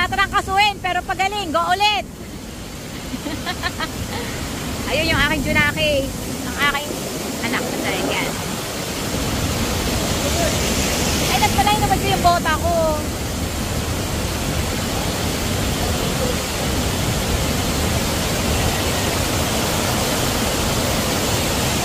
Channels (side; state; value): both; identical; correlation 1.00